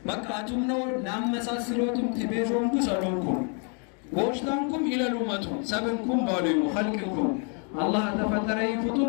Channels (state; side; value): quieter; right; 39.3 dB